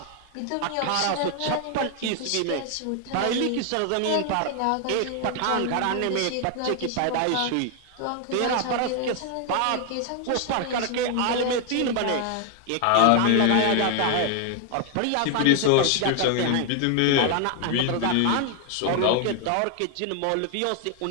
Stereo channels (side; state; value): both; different; correlation 0.00